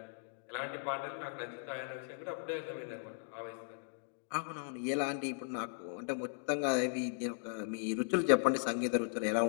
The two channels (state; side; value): silent; right; digital silence